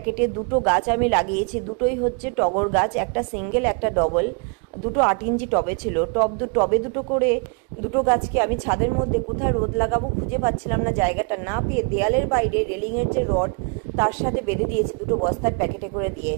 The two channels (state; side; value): quieter; left; 36.6 dB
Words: দুটো গাছ আমি লাগিয়েছি, দুটোই হচ্ছে টগর গাছ, একটা সিঙ্গেল একটা ডবল। দুটো 8 ইঞ্চি টবে ছিল, টবে দুটো করে দুটো গাছকে আমি ছাদের মধ্যে কোথায় রোদ লাগাবো খুঁজে পাচ্ছিলাম না, জায়গাটা না পেয়ে দেয়ালের বাইরে রেলিংয়ের যে রড তার সাথে বেঁধে দিয়েছি দুটো বস্তার প্যাকেটে করে দিয়ে।